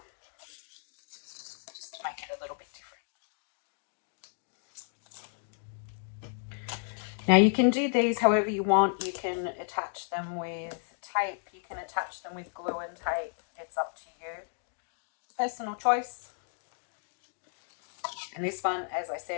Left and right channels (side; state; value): right; silent; digital silence